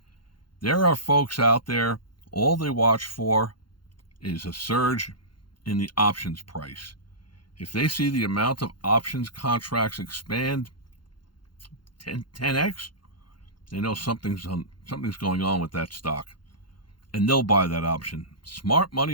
There are folks out there, all they watch for is a surge in the options price. If they see the amount of options contracts expand 10x, they know something's going on with that stock. And they'll buy that option. Smart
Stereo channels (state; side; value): late; right; 0.72 ms